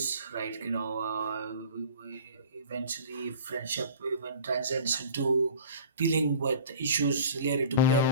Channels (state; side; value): inverted; both; correlation -0.43